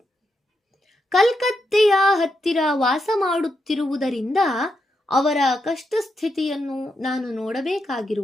ಕಲ್ಕತ್ತೆಯ ಹತ್ತಿರ ವಾಸ ಮಾಡುತ್ತಿರುವುದರಿಂದ ಅವರ ಕಷ್ಟ ಸ್ಥಿತಿಯನ್ನು ನಾನು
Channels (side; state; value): both; normal; correlation 0.83